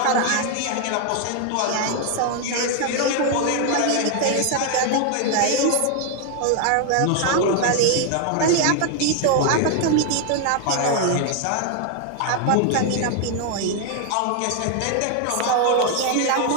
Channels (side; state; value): both; different; correlation 0.00